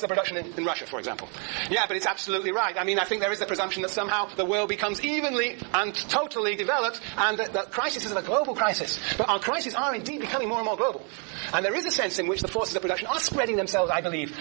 of production in Russia, for example. Yeah, but it's absolutely right. I mean, I think there is the presumption that somehow the world becomes evenly fully and totally developed, and that the crisis is a global crisis. But our crises are indeed becoming more and more global. And there is a sense in which the forces of production are spreading themselves, I believe,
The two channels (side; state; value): left; quieter; 36.1 dB